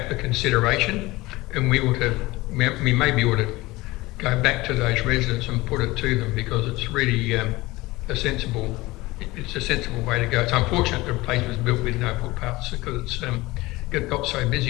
for consideration, and we maybe ought to go back to those residents and put it to them, because it's really a sensible way to go. It's unfortunate the place was built with no footpaths because it's got so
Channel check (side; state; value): right; quieter; 20.5 dB